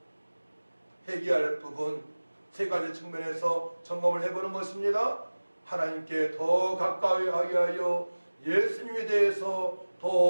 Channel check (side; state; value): both; inverted; correlation -1.00